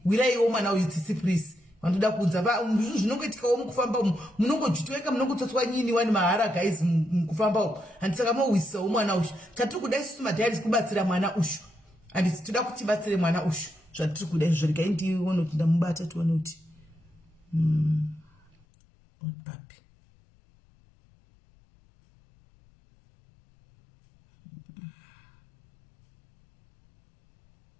Wiraiwo mwana uyu tsitsi please. Vandoda kunza zvinongoitikawo mukufamba umu munongojitweka munongotsotswa nyini wani mahara guys mukufamba umu. Handisaka mowisawo mwana ushu. Tatiri kuda isusu madhairis kubatsira mwana ushu. Handisi toda kuti tibatsire mwana ushu. Zvatiri kuda izvo regai ndione kuti ndamubata tione kuti papi.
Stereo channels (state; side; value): drops out; right; at 18.7 s